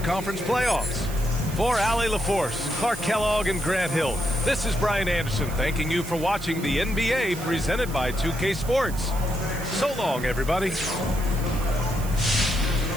Conference playoffs. For Allie LaForce, Clark Kellogg, and Grant Hill, this is Brian Anderson thanking you for watching the NBA presented by 2K Sports. So long, everybody.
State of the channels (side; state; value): right; noise; hiss, 14 dB below the sound